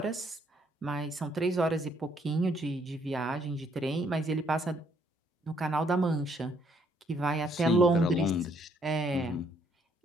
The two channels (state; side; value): normal; both; correlation 0.68